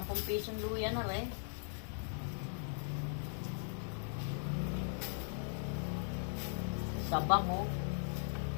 10 pisong luya na rin. Sabang oh.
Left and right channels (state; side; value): silent; right; digital silence